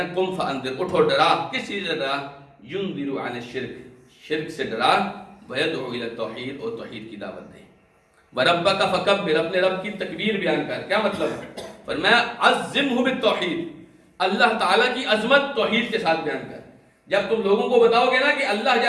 قُمْ فَأَنذِرْ، اٹھو ڈرا. کس چیز سے ڈرا؟ يُنذِرُ عَنِ الشِّرْكِ، شرک سے ڈرا. وَيَدْعُو إِلَى التَّوْحِيدِ، اور توحید کی دعوت دے. وَرَبَّكَ فَكَبِّرْ، اپنے رب کی تکبیر بیان کر. کیا مطلب؟ فرمایا عَظِّمْهُ بِالتَّوْحِيدِ، اللہ تعالیٰ کی عظمت توحید کے ساتھ بیان کر. جب تم لوگوں کو بتاؤ گے نا کہ اللہ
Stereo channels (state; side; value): identical; both; correlation 1.00